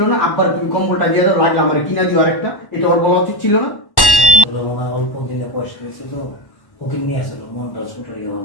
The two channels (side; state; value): right; late; 1.1 ms